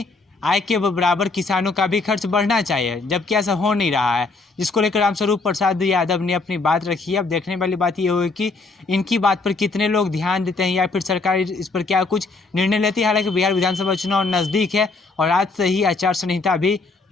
आय के बराबर किसानों का भी खर्च बढ़ना चाहिए, जबकि ऐसा हो नहीं रहा है, जिसको लेकर रामस्वरूप प्रसाद यादव ने अपनी बात रखी है। अब देखने वाली बात ये होगी कि इनकी बात पर कितने लोग ध्यान देते हैं या फिर सरकार इस पर क्या कुछ निर्णय लेती है। हालांकि बिहार विधानसभा चुनाव नज़दीक है और आज से ही आचार संहिता भी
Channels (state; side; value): quieter; right; 3.7 dB